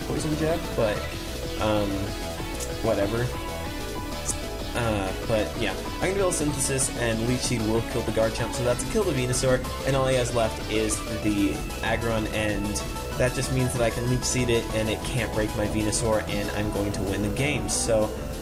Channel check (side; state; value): both; identical; correlation 1.00